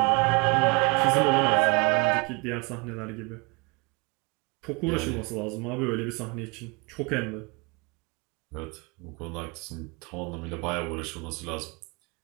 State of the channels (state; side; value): quieter; left; 30.4 dB